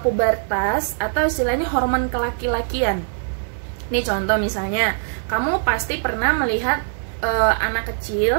pubertas atau istilahnya hormon kelaki-lakian. Ini contoh misalnya, kamu pasti pernah melihat anak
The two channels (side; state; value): left; silent; digital silence